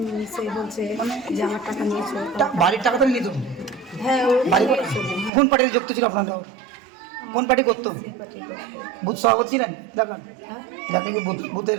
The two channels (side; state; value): left; drops out; at 5.3 s